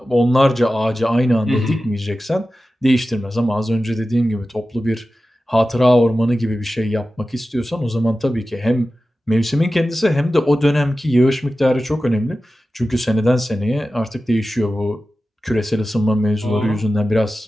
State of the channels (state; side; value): normal; both; correlation 0.94